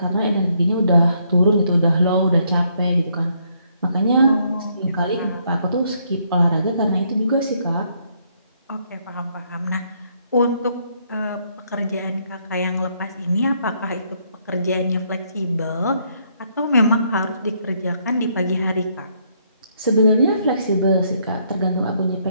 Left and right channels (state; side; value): inverted; both; correlation -0.71